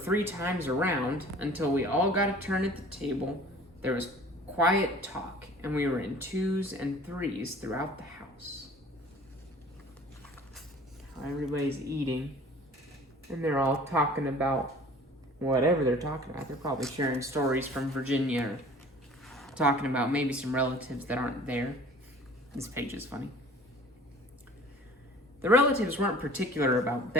times around, until we all got a turn at the table, there was quiet talk, and we were in 2s and 3s throughout the house. Everybody's eating, and they're all talking about whatever they're talking about. They're probably sharing stories from Virginia, or talking about maybe some relatives that aren't there. This page is funny. The relatives weren't particular about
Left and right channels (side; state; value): both; normal; correlation 0.47